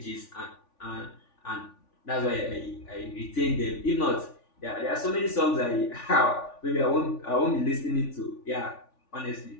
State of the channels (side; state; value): right; late; 3.5 ms